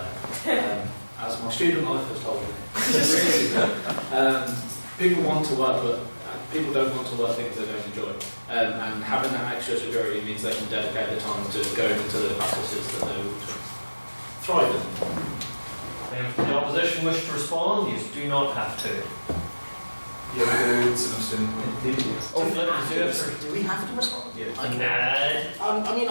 as my student life has told me. People want to work, but people don't want to work things they don't enjoy. And having that extra security means they can dedicate the time to going into the practices that they would thrive in. If the opposition wish to respond, you do not have to. You're good, Simpson. Oh, let me do it. Do we have to respond? Nah. I mean,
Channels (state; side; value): inverted; both; correlation -1.00